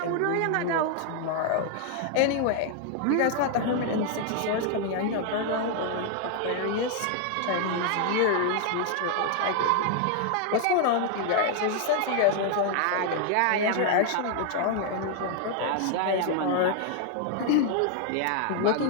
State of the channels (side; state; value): both; different; correlation 0.00